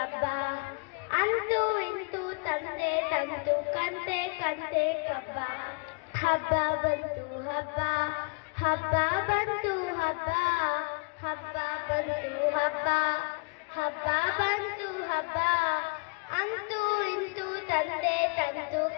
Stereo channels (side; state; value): right; quieter; 34.4 dB